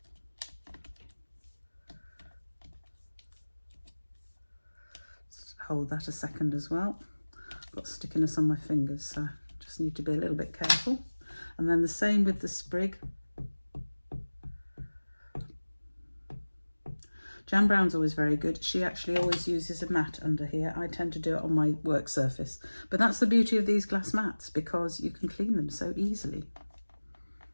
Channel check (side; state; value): both; inverted; correlation -1.00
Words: Just hold that a second as well. I've got stickiness on my fingers, so I just need to be a little bit careful. And then the same with the sprig. Jan Brown's always very good. She actually always uses a mat under here. I tend to do it on my work surface. But that's the beauty of these glass mats, because you can clean them so easily.